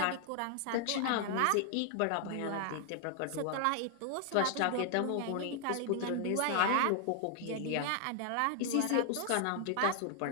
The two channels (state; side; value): different; both; correlation 0.00